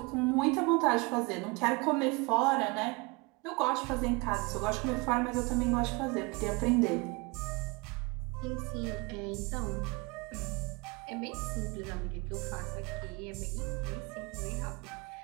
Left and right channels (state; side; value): quieter; left; 27.3 dB